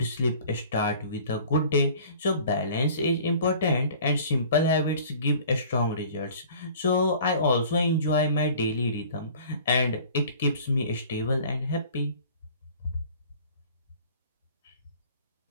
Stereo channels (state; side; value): inverted; both; correlation -0.47